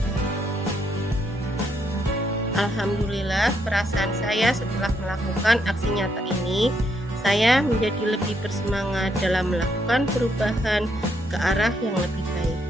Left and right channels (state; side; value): normal; both; correlation 0.76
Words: Alhamdulillah perasaan saya setelah melakukan aksi nyata ini, saya menjadi lebih bersemangat dalam melakukan perubahan ke arah yang lebih baik,